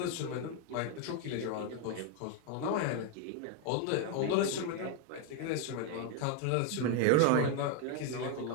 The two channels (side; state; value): both; different; correlation 0.01